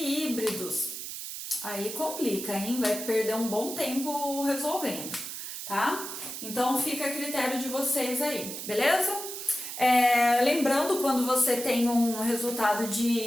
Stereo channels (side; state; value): right; noise; hiss, 8 dB below the sound